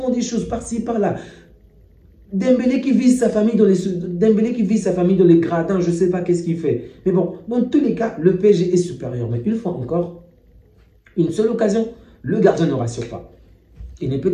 des choses par-ci, par-là. Dembélé qui vise sa famille dans les gradins, je ne sais pas qu'est-ce qu'il fait. Mais bon, dans tous les cas, le PSG est supérieur. Mais une fois encore, une seule occasion, le gardien ne rassure pas. Il n'est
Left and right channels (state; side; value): identical; both; correlation 1.00